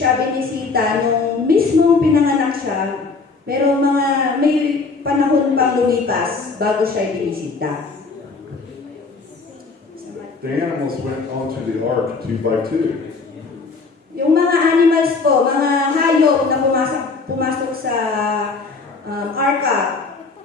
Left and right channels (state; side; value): quieter; right; 4.2 dB